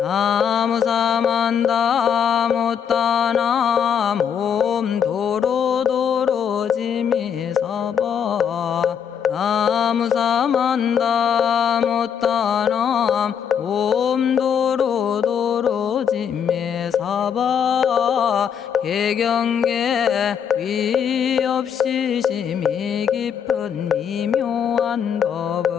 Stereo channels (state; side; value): quieter; right; 7.9 dB